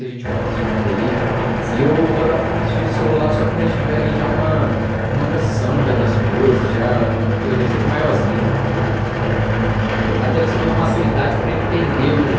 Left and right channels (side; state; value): both; identical; correlation 1.00